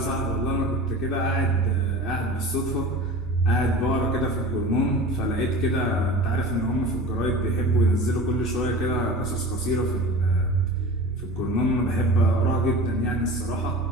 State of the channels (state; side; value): normal; both; correlation 0.36